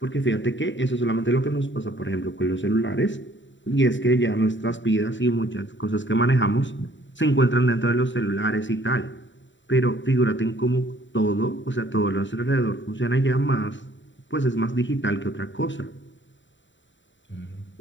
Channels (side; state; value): right; late; 0.54 ms